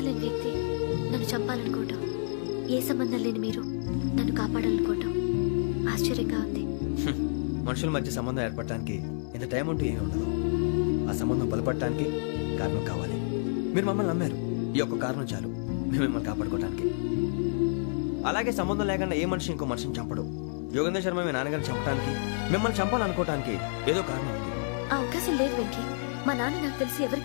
లేని వ్యక్తి నన్ను చంపాలనుకోవటం, ఏ సంబంధం లేని మీరు నన్ను కాపాడాలనుకోవటం ఆశ్చర్యంగా ఉంది. మనుషుల మధ్య సంబంధం ఏర్పడటానికి ఇంత టైం ఉంటూ ఏమీ ఉండదు. ఆ సంబంధం బలపడటానికి కారణం కావాలి. మీరు మమ్మల్ని నమ్మారు, ఈ ఒక్క కారణం చాలు మేము మిమ్మల్ని కాపాడుకోవడానికి. అలాగే సంబంధం లేకుండా ఏ మనిషి ఇంకో మనిషిని చంపడు. యోగేంద్ర శర్మ మీ నాన్నగారిని చంపడానికి, మిమ్మల్ని చంపాలనుకోవటానికి ఏదో కారణం ఉంది. ఆ అవకాశం లేదు వెంకీ. మా నాన్న నాకు తెలిసి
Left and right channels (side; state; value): right; silent; digital silence